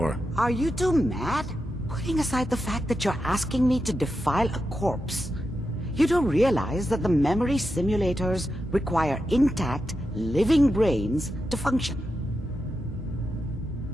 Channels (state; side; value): normal; both; correlation 0.88